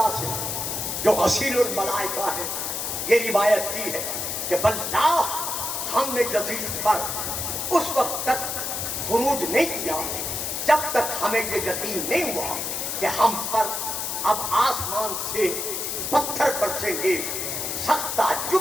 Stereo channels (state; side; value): noise; left; hiss, 3 dB below the sound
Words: سے جو غسیل الملائکہ ہے یہ روایت کی ہے کہ واللہ ہم نے یزید پر اس وقت تک خروج نہیں کیا جب تک ہمیں یہ یقین نہیں ہوا کہ ہم پر اب آسمان سے پتھر برسیں گے. سخت